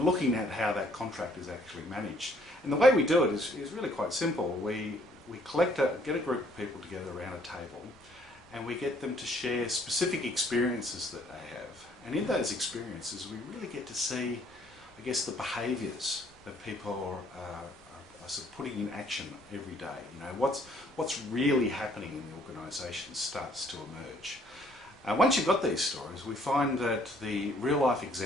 looking at how that contract is actually managed. And the way we do it is really quite simple. We get a group of people together around a table and we get them to share specific experiences that they have. And in those experiences we really get to see, I guess, the behaviours that people are sort of putting in action every day. You know, what's really happening in the organisation starts to emerge. Once you've got these stories, we find that the real-life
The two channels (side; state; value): left; noise; rumble, 28 dB below the sound